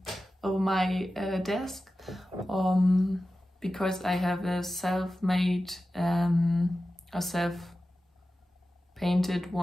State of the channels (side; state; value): both; normal; correlation 0.94